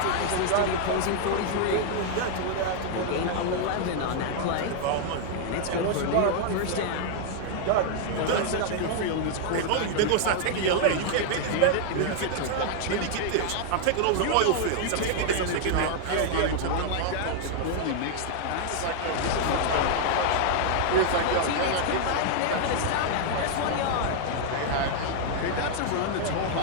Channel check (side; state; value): both; different; correlation 0.00